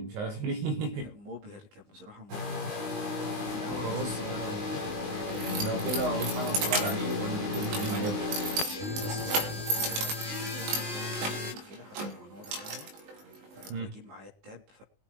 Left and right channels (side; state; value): left; late; 19 ms